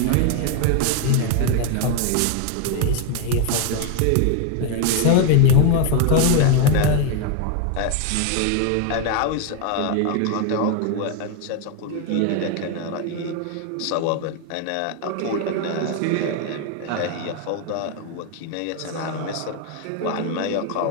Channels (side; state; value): both; different; correlation 0.01